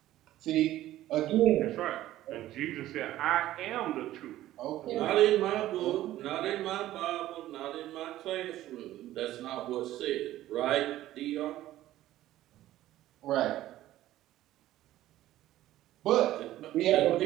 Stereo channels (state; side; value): quieter; left; 14.4 dB